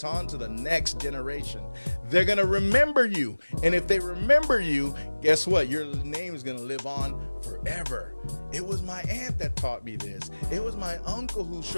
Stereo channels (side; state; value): both; inverted; correlation -1.00